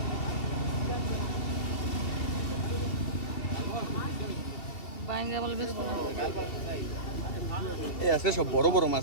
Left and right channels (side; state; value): right; late; 2.7 ms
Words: এই আছে সব বড় বড়